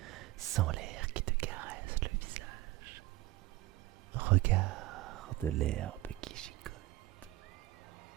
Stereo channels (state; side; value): quieter; left; 17.8 dB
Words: Sans l'air qui te caresse le visage. Regarde l'herbe qui gigote.